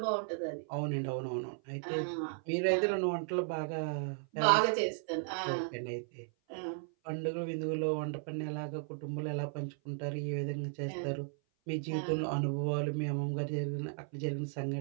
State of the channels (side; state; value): left; silent; 54 dB below the other